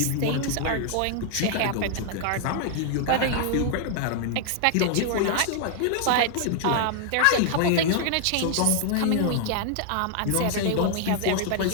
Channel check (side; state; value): both; different; correlation 0.00